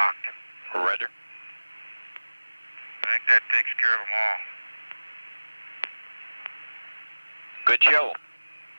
Roger. I think that takes care of them all. Good show.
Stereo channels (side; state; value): both; inverted; correlation -1.00